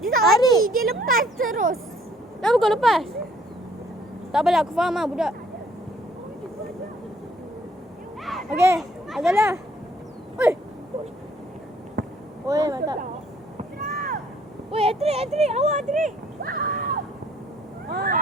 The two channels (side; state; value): both; normal; correlation 0.62